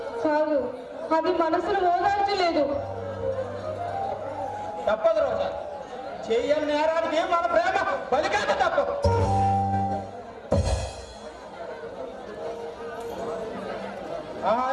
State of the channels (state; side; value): identical; both; correlation 1.00